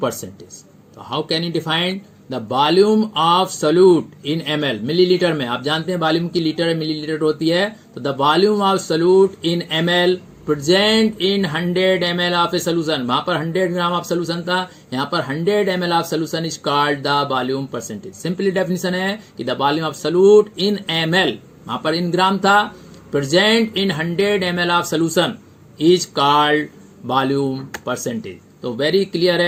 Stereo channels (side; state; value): both; identical; correlation 1.00